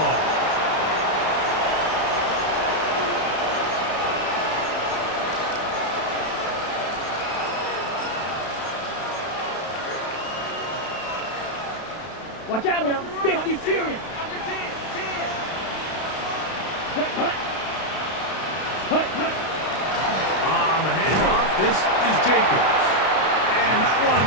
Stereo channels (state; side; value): late; right; 32 ms